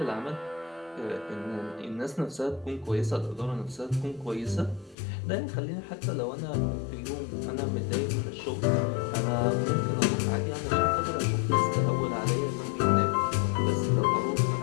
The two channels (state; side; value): drops out; right; at 5.0 s